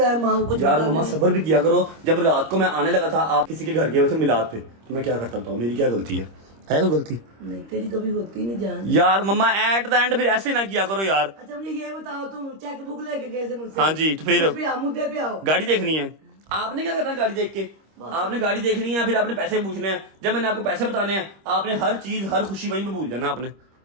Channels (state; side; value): late; left; 26 ms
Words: माँ को? कुछ यार बताना मम्मा नहीं। सब्र भी किया करो। जब रात को मैं आने लगा था, आप किसी के घर गए हुए थे मिलाद पे, तो मैं क्या करता हूँ? मेरी क्या गलती है कोई गलती? नहीं तेरी कभी होती नहीं जान। यार मम्मा एट द एंड फिर ऐसे ना किया करो यार। अच्छा मुझे ये बताओ, तुम चेकबुक लेके गए थे मुझसे? हाँ जी, तो फिर उस पे आओ, मुद्दे पे आओ। गाड़ी देखनी है। आपने क्या करना गाड़ी देख के? आपने गाड़ी देखनी है, फिर आपने पैसे पूछने हैं। जब मैंने आपको पैसे बताने हैं, आपने हर चीज, हर खुशी वहीं पे भूल जाना आपने।